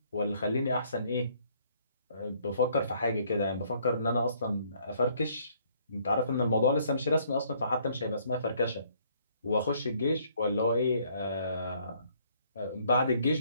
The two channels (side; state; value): both; inverted; correlation -0.64